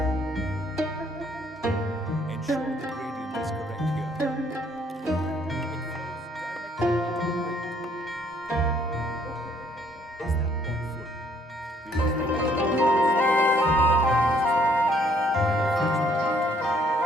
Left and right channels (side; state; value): both; normal; correlation 0.65